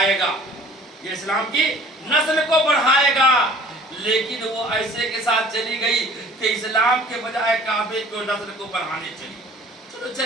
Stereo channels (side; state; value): both; normal; correlation 0.49